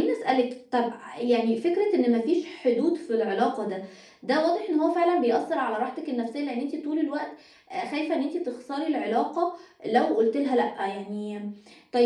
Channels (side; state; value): both; identical; correlation 1.00